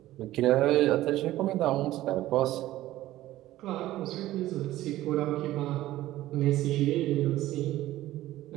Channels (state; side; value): quieter; left; 15.3 dB